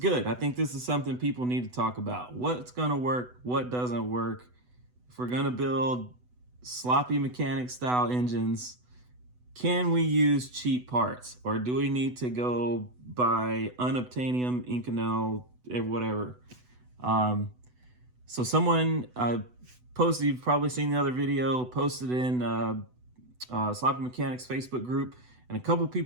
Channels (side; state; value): left; late; 8.0 ms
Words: I think this is something people need to talk about. What's going to work? What doesn't work? If we're going to build sloppy mechanic style engines, can we use cheap parts, or do we need to go buy unobtainium, Inconel, whatever? So someone posted, you've probably seen the other video, posted in Sloppy Mechanics Facebook group, and a couple